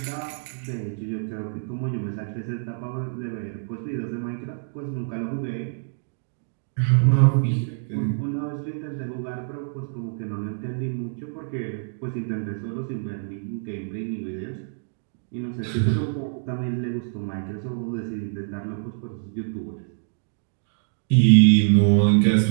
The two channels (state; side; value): silent; left; digital silence